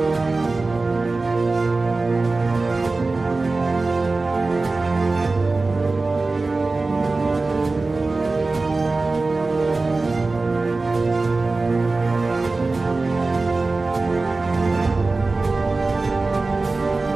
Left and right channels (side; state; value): left; quieter; 3.5 dB